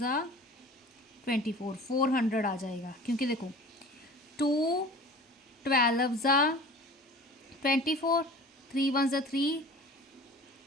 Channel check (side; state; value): both; normal; correlation 0.42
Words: 24, 400 आ जाएगा, क्योंकि देखो 2 12 ज़ा 24, 3 1 ज़ा 3,